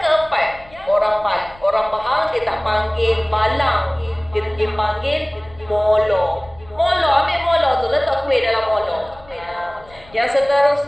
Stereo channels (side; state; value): left; noise; rumble, 24 dB below the sound